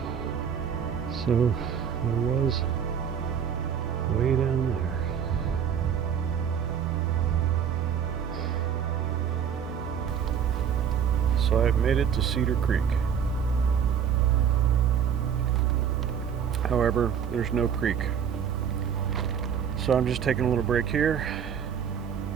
So, I was way down there. So I've made it to Cedar Creek. However, there's no creek. So I'm just taking a little break here.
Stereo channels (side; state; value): left; quieter; 8.0 dB